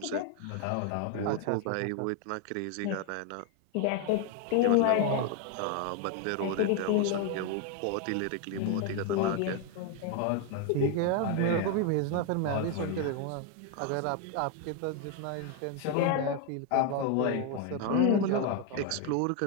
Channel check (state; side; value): different; both; correlation 0.01